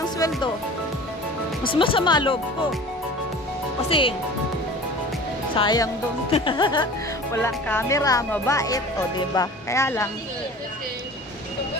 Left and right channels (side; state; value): both; normal; correlation 0.41